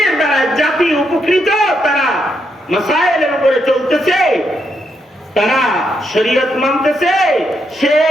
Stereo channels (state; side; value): normal; both; correlation 0.79